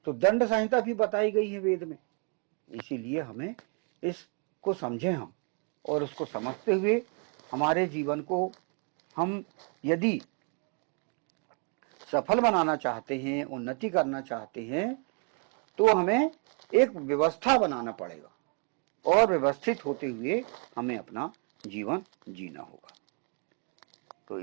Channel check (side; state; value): left; quieter; 39.9 dB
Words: तो दंड संहिता भी बताई गई है वेद में। इसीलिए हमें इसको समझें हम, और उसको समझते हुए हमारे जीवन को हम यदि सफल बनाना चाहते हैं, उन्नति करना चाहते हैं, तो हमें एक व्यवस्था बनाना पड़ेगा, और व्यवस्थित होते हुए हमें अपना जीवन जीना होगा। तो